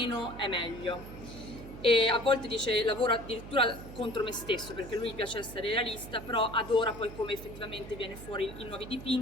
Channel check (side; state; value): right; noise; hum, 13 dB below the sound